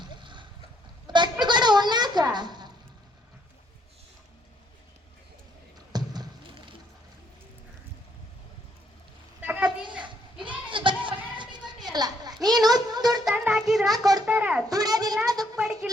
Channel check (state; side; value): normal; both; correlation 0.70